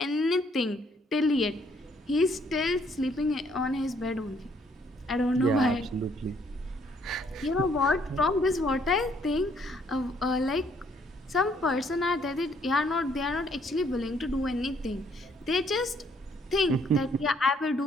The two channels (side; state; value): both; normal; correlation 0.67